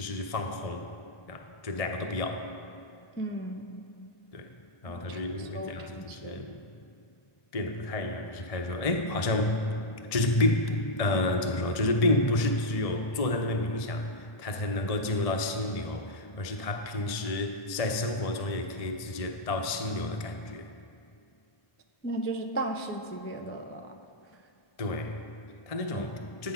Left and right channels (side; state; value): right; late; 1.6 ms